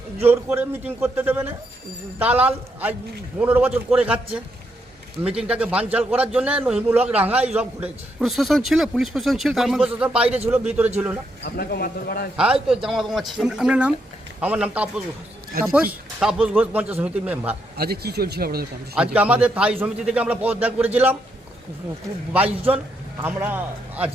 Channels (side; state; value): both; normal; correlation 0.78